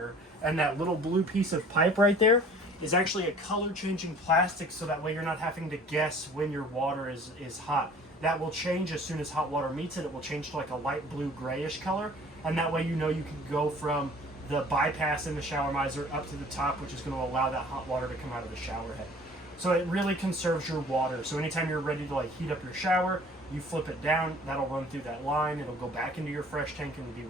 And that little blue piece of pipe right there is actually a color changing plastic, so that way you're not having to guess when your water is hot. That will change as soon as hot water meets it. It will change to like a light blue grayish color, and that way you know you can go from the bypass in the shower miser up to the top, which is going to allow that hot water to come out of the shower head. So it really conserves your water. So anytime you're ready to like heat up your shower, you flip it down, that'll run through that line, it'll go back into your fresh tank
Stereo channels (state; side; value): normal; both; correlation 0.50